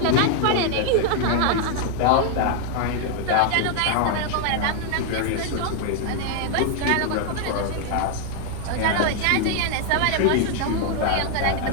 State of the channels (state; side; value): different; both; correlation 0.00